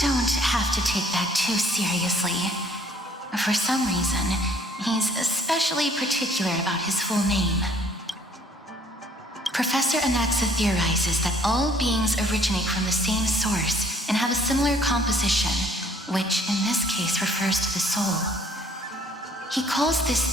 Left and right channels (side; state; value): both; normal; correlation 0.59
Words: don't have to take that too seriously. For some reason, he's especially particular about his full name. Professor Anaxa theorizes that all beings originate from the same source and have a similar composition, which in this case refers to the soul. He calls this